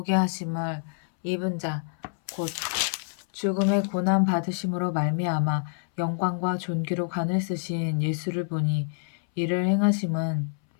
하심을 입은 자 곧 죽음의 고난 받으심으로 말미암아 영광과 존귀로 관을 쓰신 예수를 보니 이를 행하심은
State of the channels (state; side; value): silent; right; 60 dB below the other